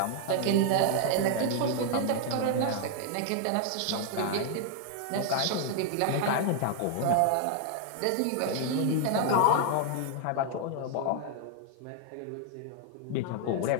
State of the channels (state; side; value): different; both; correlation 0.00